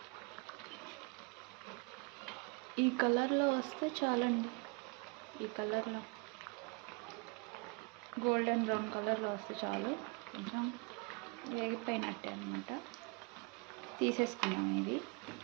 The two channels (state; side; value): quieter; left; 31.1 dB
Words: ఈ కలర్లో వస్తే చాలండి. ఈ కలర్లో గోల్డెన్ బ్రౌన్ కలర్లో వస్తే చాలు. కొంచెం వేగిపోయినట్టే అనమాట. తీసేసుకున్నాం. ఇది